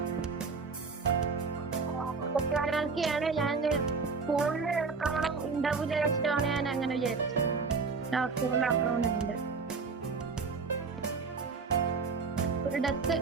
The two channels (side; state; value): left; quieter; 4.7 dB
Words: ാണ് ഞാൻ ഫോണിൽ എടുക്കണം ഉണ്ടാവില്ല വെച്ചിട്ടാണ് ഞാൻ അങ്ങനെ വിചാരിച്ചത്. ഫോണിൽ അക്കൗണ്ട് ഉണ്ട്. ഒരു ഡെത്ത്